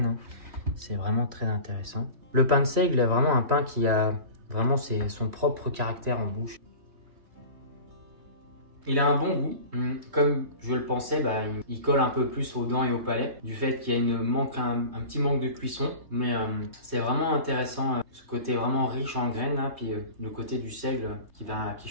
C'est vraiment très intéressant. Le pain de seigle est vraiment un pain qui a vraiment son propre caractère en bouche. Il a un bon goût. Comme je le pensais, il colle un peu plus aux dents et au palais du fait qu'il y a un petit manque de cuisson. Mais c'est vraiment intéressant, ce côté vraiment riche en graines, puis le côté du seigle qui va à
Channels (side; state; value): left; late; 3.2 ms